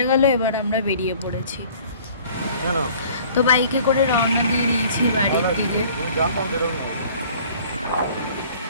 গেল এবার আমরা বেরিয়ে পড়েছি। তো বাইকে করে রওনা দিয়ে দিয়েছি বাড়ির দিকে।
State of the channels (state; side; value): inverted; both; correlation -0.51